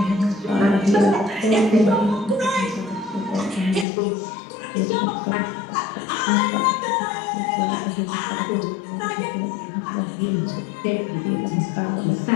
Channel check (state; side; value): drops out; right; at 3.9 s